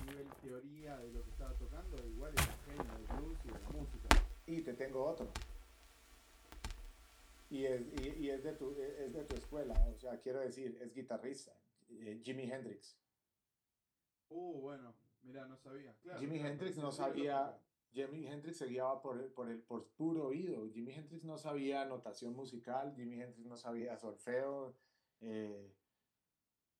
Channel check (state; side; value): identical; both; correlation 1.00